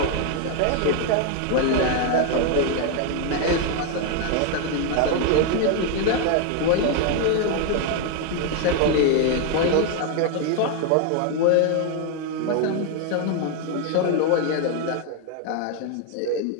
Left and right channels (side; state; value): both; different; correlation 0.01